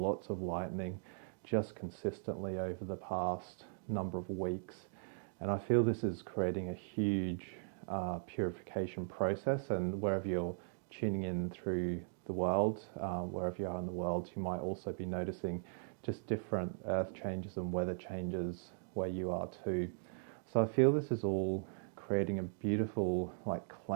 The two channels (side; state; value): left; silent; digital silence